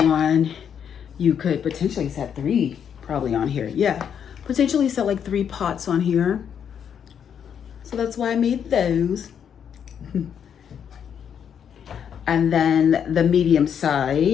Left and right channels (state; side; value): quieter; right; 8.2 dB